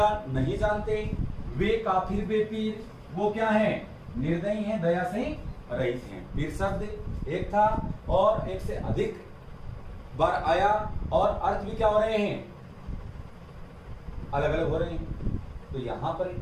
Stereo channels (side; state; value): both; identical; correlation 1.00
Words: नहीं जानते। वे काफिर बेपीर, वो क्या है, निर्दयी हैं, दया से रहित हैं। पीर शब्द एक था और एक से अधिक बार आया और अर्थ भी क्या हो रहे हैं, अलग अलग हो रहे हैं। तो यहाँ पर